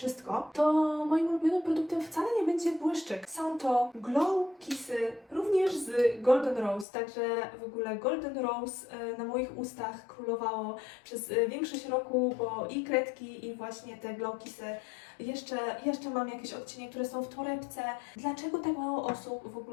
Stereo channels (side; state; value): right; drops out; at 6.9 s